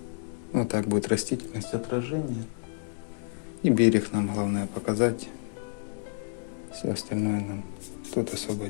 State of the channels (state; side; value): silent; right; digital silence